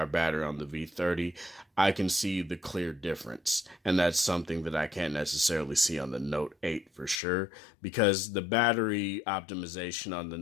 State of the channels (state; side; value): drops out; right; at 7.2 s